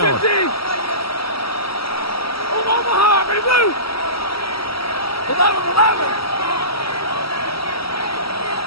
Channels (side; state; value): right; late; 0.75 ms